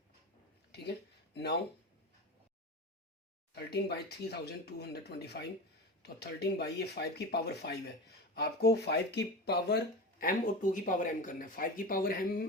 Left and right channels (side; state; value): both; normal; correlation 0.27